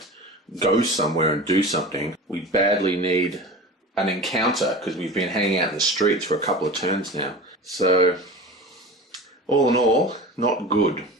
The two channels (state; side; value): normal; both; correlation 0.33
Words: go somewhere and do something. We badly need an encounter because we've been hanging out in the streets for a couple of turns now. So, all in all, not good.